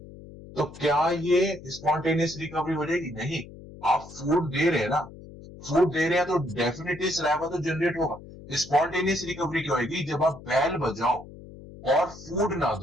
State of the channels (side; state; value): left; noise; hum, 17 dB below the sound